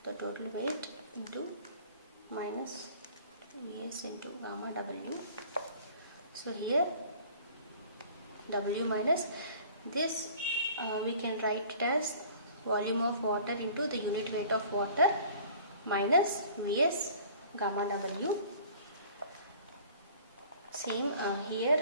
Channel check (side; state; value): both; inverted; correlation -0.49